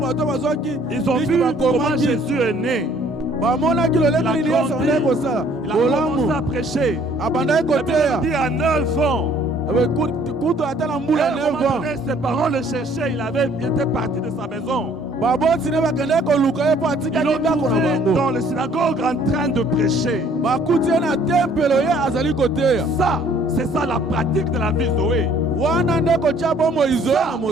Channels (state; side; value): normal; both; correlation 0.59